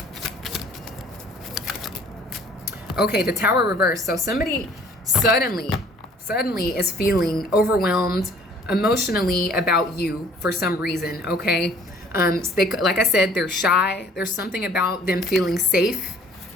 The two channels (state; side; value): normal; both; correlation 0.55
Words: Okay, the Tower reverse. So somebody suddenly is feeling overwhelmed emotionally about you for some reason, okay? So like I said, they're shy. There's something about them feeling safe,